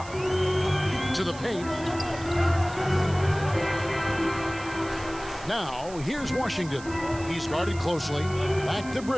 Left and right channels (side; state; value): right; noise; hiss, 17 dB below the sound